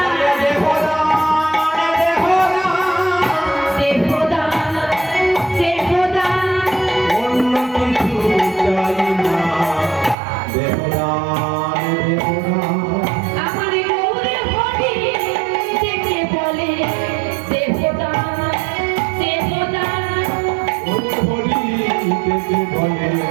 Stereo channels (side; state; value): left; drops out; at 10.2 s